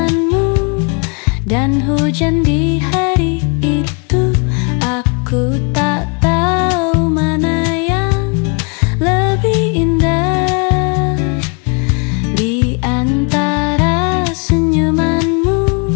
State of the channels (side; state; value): right; quieter; 35.8 dB